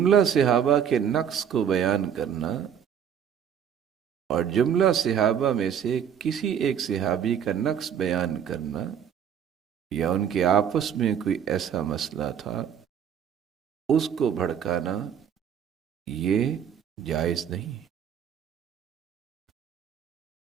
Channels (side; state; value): left; quieter; 8.4 dB